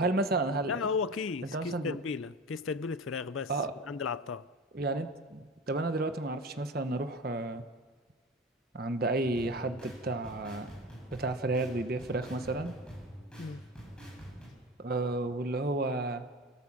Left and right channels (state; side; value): normal; both; correlation 0.31